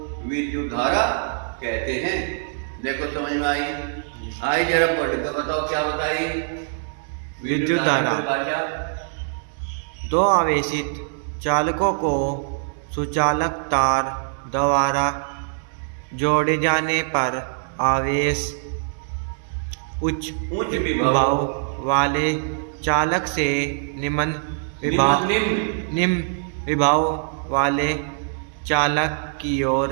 विद्युत धारा कहते हैं। देखो समझ में आई? आई जरा पढ़ के बताओ क्या बताई? विद्युत धारा 2 आवेशित चालकों को सुचालक तार द्वारा जोड़े जाने पर आवेश उच्च विभव वाले चालक से निम्न विभव वाले चालक की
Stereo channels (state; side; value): silent; left; digital silence